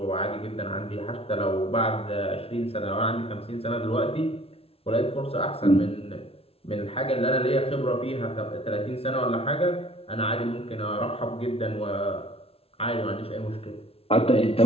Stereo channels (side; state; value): right; late; 0.28 ms